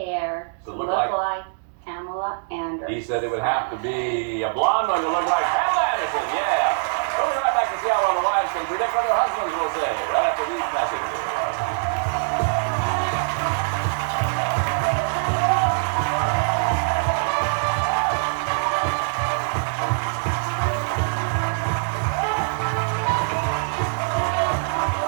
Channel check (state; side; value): silent; left; digital silence